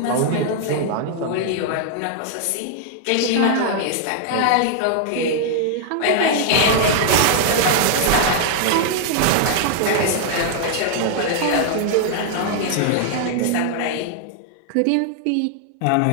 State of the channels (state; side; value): different; both; correlation 0.00